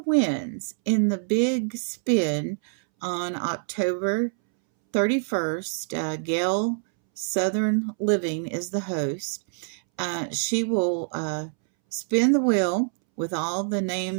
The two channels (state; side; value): silent; left; 61 dB below the other